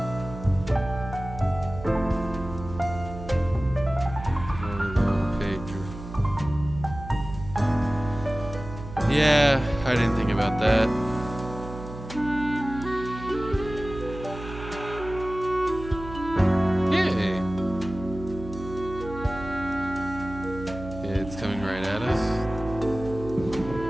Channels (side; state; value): right; noise; hum, 12 dB below the sound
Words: Yeah, I didn't think about that. Yay. It's coming right at us.